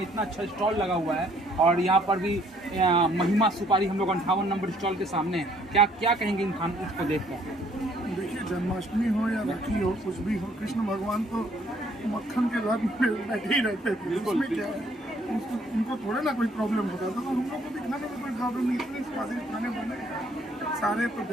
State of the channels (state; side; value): normal; both; correlation 0.64